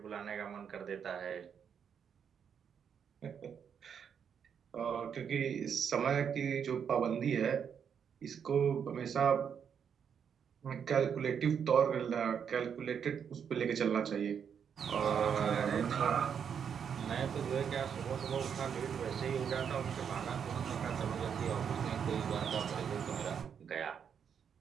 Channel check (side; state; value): left; quieter; 7.5 dB